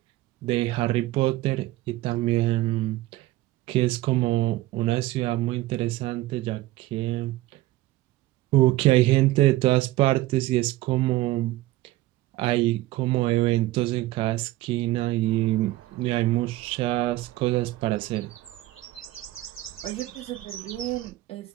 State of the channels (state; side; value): quieter; left; 17.0 dB